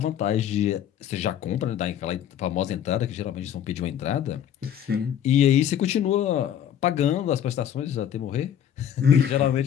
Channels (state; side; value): quieter; right; 9.7 dB